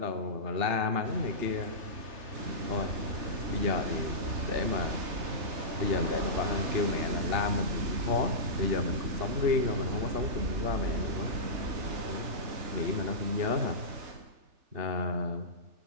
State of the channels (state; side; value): late; left; 3.4 ms